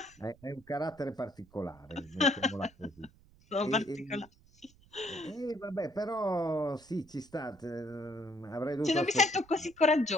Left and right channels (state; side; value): noise; right; rumble, 27 dB below the sound